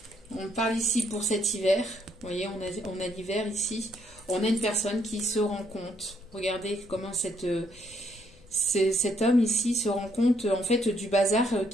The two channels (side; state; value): left; noise; rumble, 27 dB below the sound